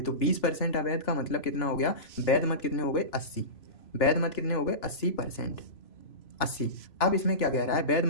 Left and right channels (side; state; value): right; late; 3.0 ms